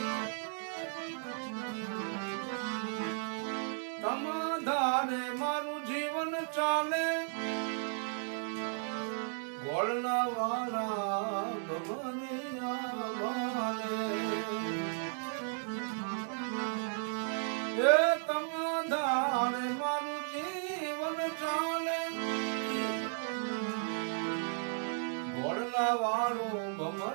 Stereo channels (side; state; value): left; silent; 55 dB below the other